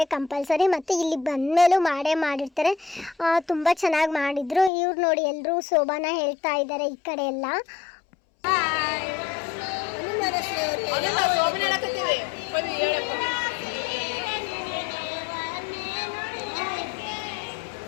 ಕಂಪಲ್ಸರಿ, ಮತ್ತು ಇಲ್ಲಿ ಬಂದಮೇಲೂ ಮಾಡಿರ್ತಾರೆ. ತುಂಬ ಚೆನ್ನಾಗಿ ಮಾಡಿದ್ರು. ಇವ್ರು ನೋಡಿ ಎಲ್ಲರೂ ಶೋಭಾನ ಹೇಳ್ತಾ ಇದ್ದಾರೆ ಈ ಕಡೆ ಎಲ್ಲ.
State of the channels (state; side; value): drops out; right; at 4.7 s